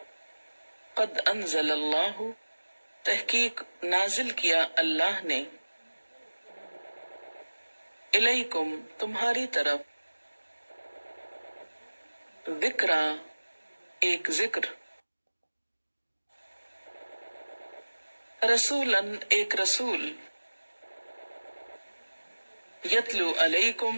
قد انزل اللہ تحقیق نازل کیا اللہ نے، الیکم تمہاری طرف، ذکرا ایک ذکر، رسولن ایک رسول، یتلو علیکم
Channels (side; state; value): both; inverted; correlation -1.00